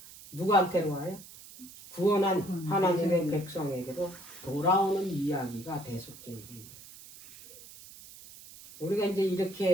누구한테로 와요? 구원한 하나님의 백성에게로 돌아오는 이야기가 대속죄일이에요. 우리가 이제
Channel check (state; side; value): noise; right; hiss, 18 dB below the sound